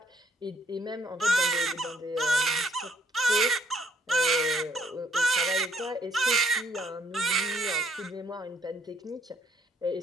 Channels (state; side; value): normal; both; correlation 0.67